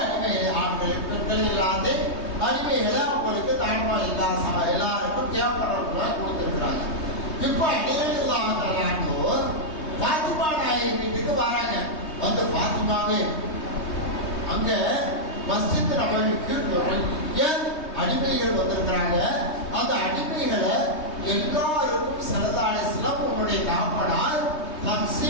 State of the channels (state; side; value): late; right; 3.2 ms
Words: அடிமை ஆண்கள் பெண்கள் இல்லாத அடிமைகளை அவங்களுக்கு தாய்மார் எல்லாருக்கும் தேவைப்படுறவங்க கொடுத்துருக்குறாங்க. இப்போ அடிமைகளாக பாத்திமா நாயகி வீட்டுக்கு வராங்க. வந்து பாத்திமாவே அங்க மஸ்ஜித் நபவிக்கு நிறைய அடிமைகள் வந்திருக்கிறாங்க. அந்த அடிமைகளை எல்லாருக்கும் ஸல்லல்லாஹு அலைஹி வஸல்லம் உன்னுடைய தாப்பனார்